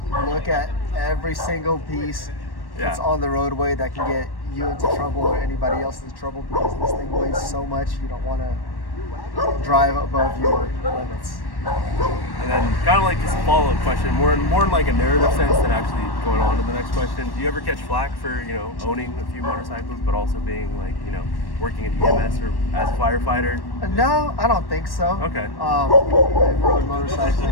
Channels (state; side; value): late; right; 1.1 ms